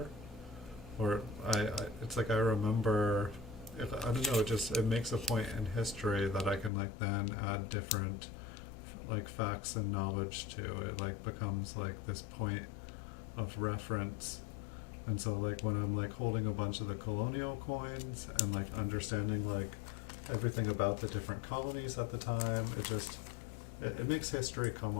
or it's like I remember. I don't know. It makes a point in history that I can then add different facts and knowledge to. It becomes this point of reference. And so when I'm holding a bunch of the colonial coins and understanding everything about the different colonies at the time, it makes history come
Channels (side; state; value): right; drops out; at 6.7 s